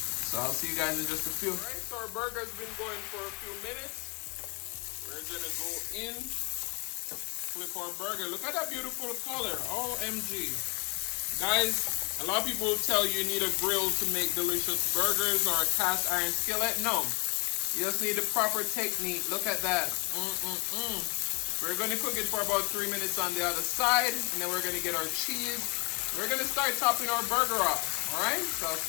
So I'll see you guys in just a few. All right, so our burger's been going for a few minutes. We're gonna go in, flip our burger. Look at that beautiful color, OMG. Guys, a lot of people will tell you need a grill to make delicious burgers or a cast iron skillet. No, you just need the proper technique. Look at that. We're gonna cook it for about 3 minutes on the other side, and then we're gonna get our cheese. We're gonna start topping our burger off, all right? So I'll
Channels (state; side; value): quieter; right; 30.2 dB